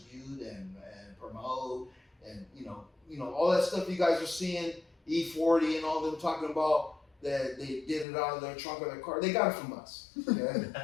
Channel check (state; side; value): drops out; right; at 8.1 s